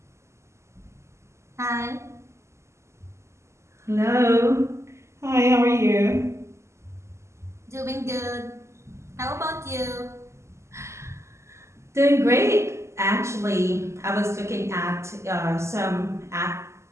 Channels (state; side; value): late; left; 0.13 ms